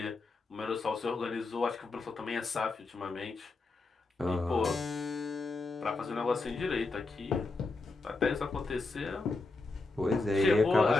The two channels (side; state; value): right; quieter; 3.5 dB